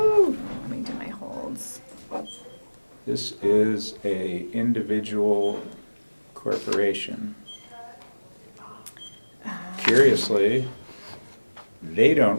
Let me do my holds. This is a individual corporation. Curiously, they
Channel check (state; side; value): inverted; both; correlation -1.00